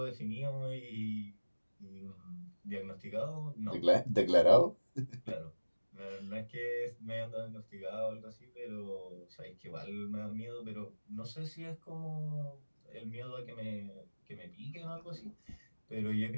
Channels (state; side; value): inverted; both; correlation -1.00